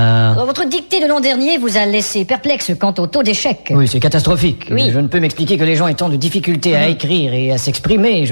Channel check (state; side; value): inverted; both; correlation -1.00